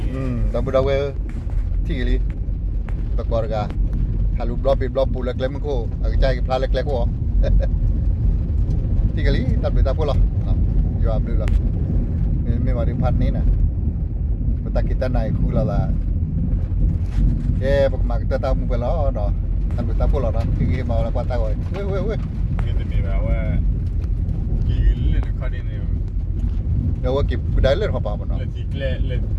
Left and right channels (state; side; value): identical; both; correlation 1.00